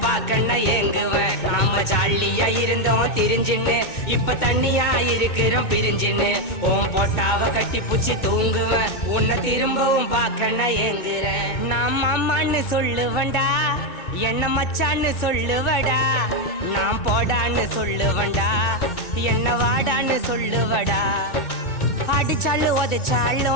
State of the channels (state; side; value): late; right; 2.2 ms